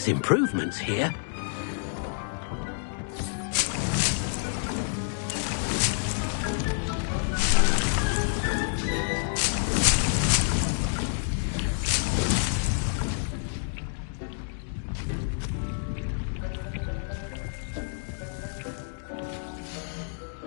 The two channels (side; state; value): right; silent; digital silence